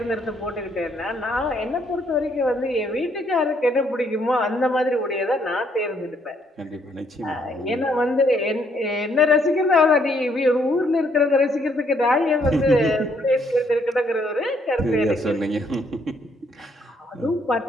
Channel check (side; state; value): both; normal; correlation 0.70